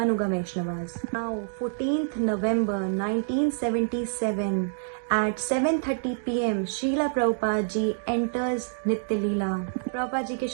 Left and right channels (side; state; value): left; silent; digital silence